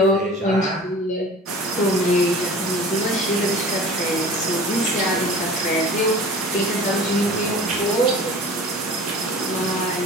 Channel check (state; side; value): normal; both; correlation 0.41